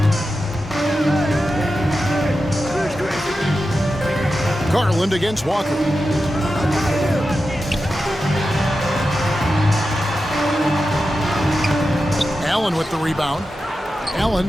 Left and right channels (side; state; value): both; normal; correlation 0.91